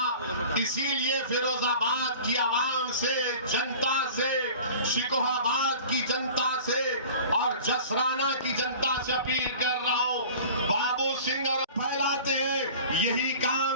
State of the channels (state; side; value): inverted; both; correlation -0.41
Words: इसीलिए फिरोजाबाद की आवाम से, जनता से, शिकोहाबाद की जनता से और जसराना की जनता से अपील कर रहा हूं, बाबू सिंह और फैलाते हैं, यही